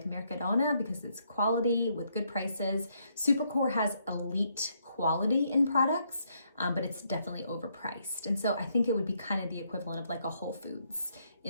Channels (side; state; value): both; inverted; correlation -0.73